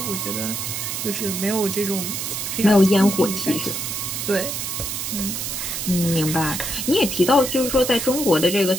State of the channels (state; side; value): noise; right; hiss, 4 dB below the sound